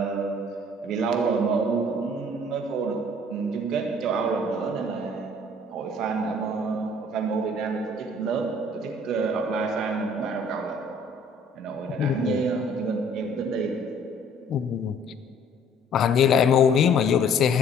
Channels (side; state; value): both; normal; correlation 0.56